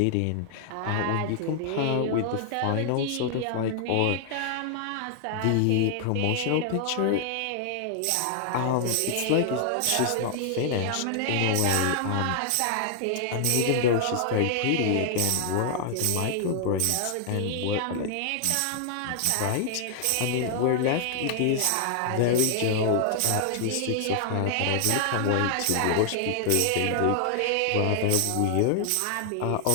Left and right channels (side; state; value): both; different; correlation 0.00